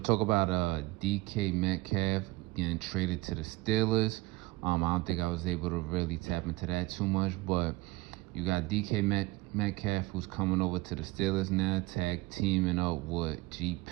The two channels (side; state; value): left; quieter; 21.1 dB